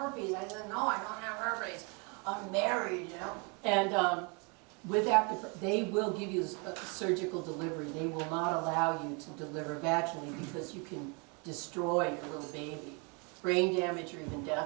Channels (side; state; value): left; quieter; 33.0 dB